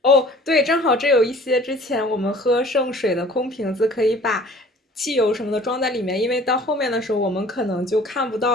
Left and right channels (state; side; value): normal; both; correlation 0.49